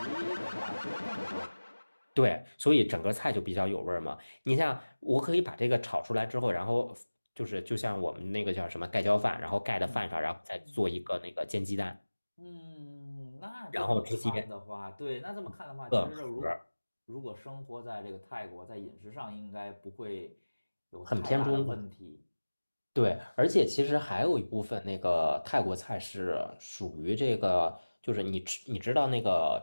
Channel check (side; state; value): both; inverted; correlation -1.00